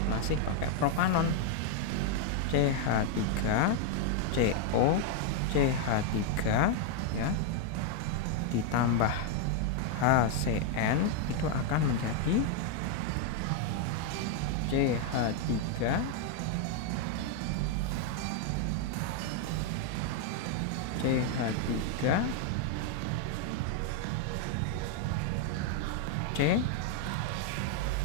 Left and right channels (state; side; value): different; both; correlation 0.00